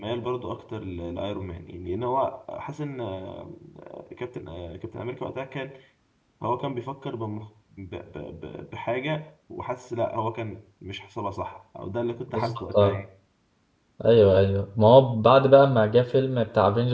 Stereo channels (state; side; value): identical; both; correlation 1.00